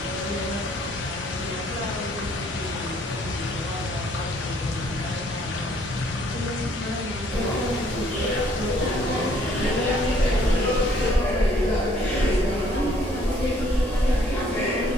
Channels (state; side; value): normal; both; correlation 0.63